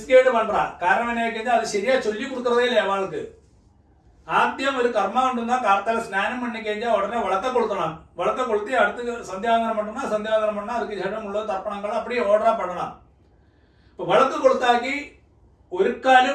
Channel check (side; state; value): both; identical; correlation 1.00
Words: பண்றா. காரணம் என்ன, அது சரியா சொல்லி கொடுக்கறதே இல்லை அவளுக்கு. ആദ്യം ഒരു കർമ്മം ഉണ്ടെന്നാ കാർത്താല സ്നാനം പണി കഴിഞ്ഞാൽ ഉടനെ വിളക്ക കൊളുത്തണം. വിളക്ക കൊളുത്തി അടുത്ത് സന്ധ്യാവന്തനം பண்ணா சந்தியாவந்தனம் பண்ணா அதுக்கு ശേഷം ഉള്ള തർപ്പണങ്ങൾ அப்படியே ഓർഡറാ பண்ணണം. ഇപ്പൊ വിളക്ക് കൊളുത്താക്കി ഒരുക്കാലും